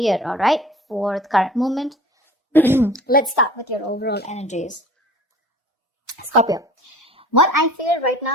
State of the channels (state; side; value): normal; both; correlation 0.44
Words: all right, for the current moment. Let's start with your overall energies. Scorpio, what I feel right